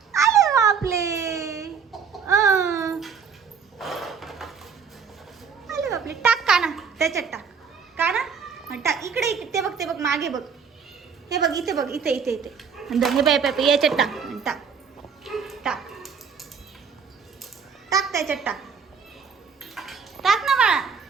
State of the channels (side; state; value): left; quieter; 6.2 dB